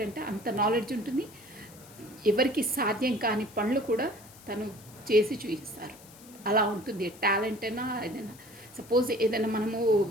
అంటే. అంత నాలెడ్జ్ ఉంటుంది, ఎవరికి సాధ్యం కాని పనులు కూడా తను చేసి చూపిస్తారు. అలా ఉంటుంది టాలెంట్ అయినా ఏదైనా. సపోజ్ ఏదైనా మనము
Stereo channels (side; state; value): left; noise; hiss, 21 dB below the sound